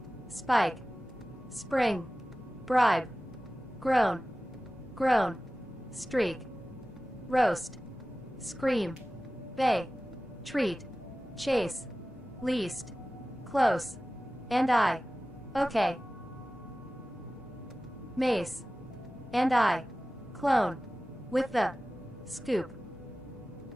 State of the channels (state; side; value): normal; both; correlation 0.96